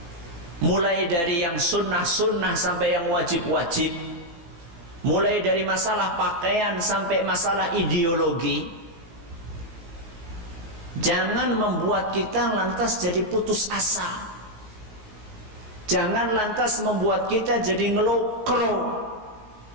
mulai dari yang sunnah-sunnah sampai yang wajib-wajib, mulai dari masalah pakaian sampai masalah ideologi. Jangan membuat kita lantas jadi putus asa. Jangan lantas membuat kita jadi ngelokro.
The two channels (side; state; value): left; late; 18 ms